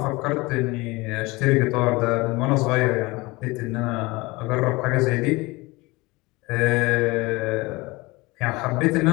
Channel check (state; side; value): quieter; right; 23.0 dB